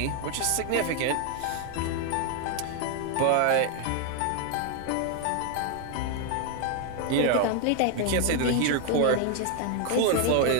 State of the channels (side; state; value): both; different; correlation 0.01